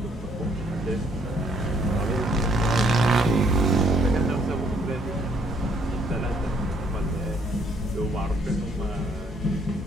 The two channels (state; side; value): normal; both; correlation 0.67